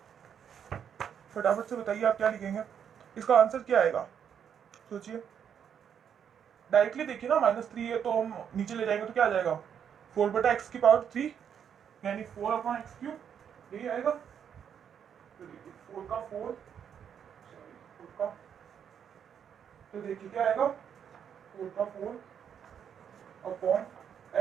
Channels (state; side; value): quieter; left; 8.2 dB